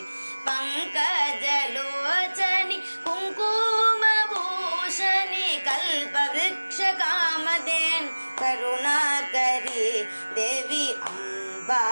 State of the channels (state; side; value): inverted; both; correlation -1.00